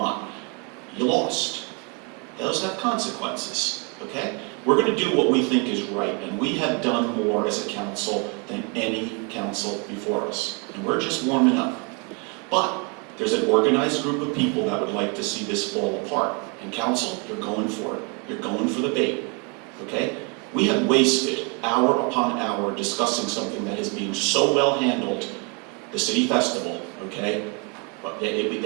You lost. Those have consequences, okay? We're going to do what we think is right, and we have done more as a council than any council before us, and we're just warming up. But there's an organized group of people that would like to see this fall apart, and council, you're going for it. You're going for the bait, okay? We have wasted hour upon hour discussing something that is being so well handled, the city festival, okay? But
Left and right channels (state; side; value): quieter; left; 34.0 dB